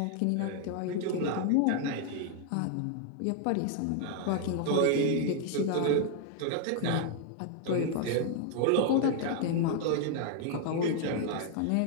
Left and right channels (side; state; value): both; different; correlation 0.00